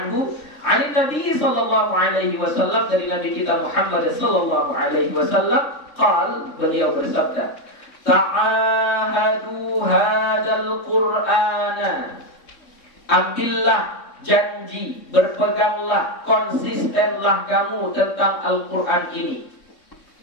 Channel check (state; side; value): late; right; 3.7 ms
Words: an Nabi sallallahu alaihi wasallam, dari Nabi kita Muhammad sallallahu alaihi wasallam, qal, beliau bersabda, ta'ahadu hadzal Qur'ana, ambillah janji, berpeganglah, konsistenlah kamu tentang Al-Quran ini.